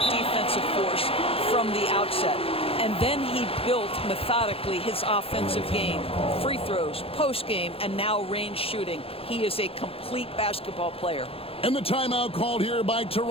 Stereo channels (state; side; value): late; right; 0.27 ms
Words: defensive force from the outset. And then he built methodically his offensive game. Free throws, post-game, and now range shooting. He is a complete basketball player. And the timeout called here by